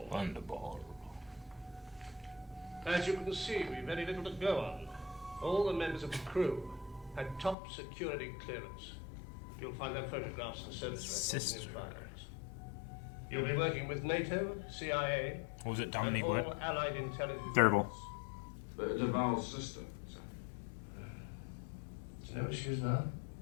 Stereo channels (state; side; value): drops out; right; at 7.6 s